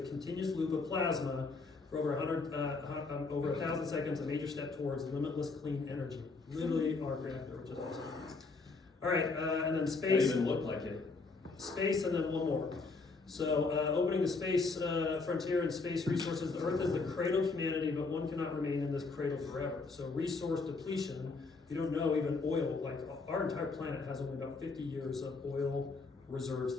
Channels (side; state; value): right; quieter; 4.0 dB